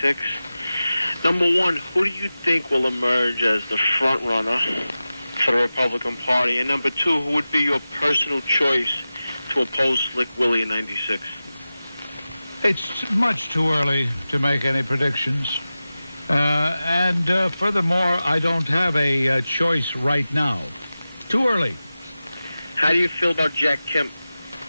Number one, who do you think will emerge as the front runner for the Republican Party? And number two, who would be your personal choice to oppose Slick Willie in 96? It's much too early to make any predictions. And furthermore, I don't have a choice right now. Too early. How do you feel about Jack Kemp?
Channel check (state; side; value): inverted; both; correlation -0.95